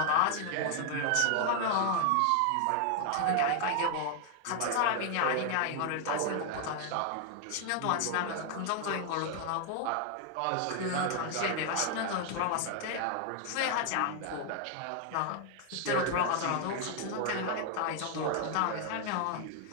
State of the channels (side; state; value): both; different; correlation 0.00